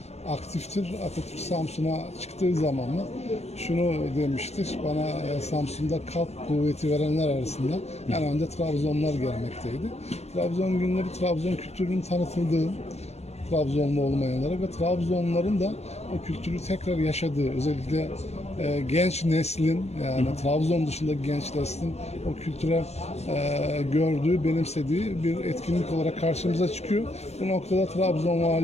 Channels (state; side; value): late; right; 0.31 ms